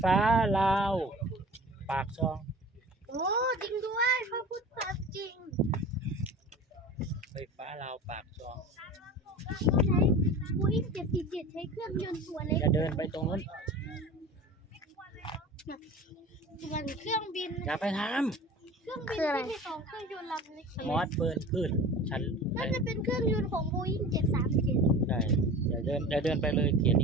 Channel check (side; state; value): both; normal; correlation 0.37